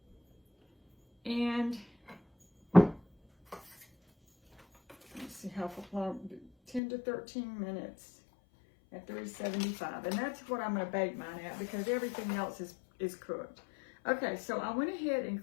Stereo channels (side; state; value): right; drops out; at 6.8 s